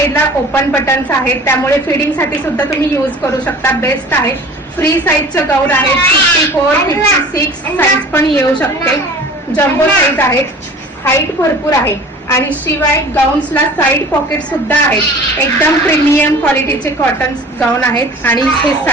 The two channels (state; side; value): normal; both; correlation 0.44